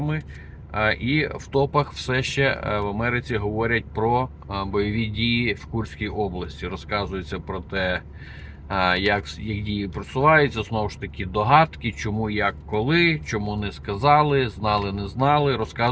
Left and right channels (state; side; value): identical; both; correlation 1.00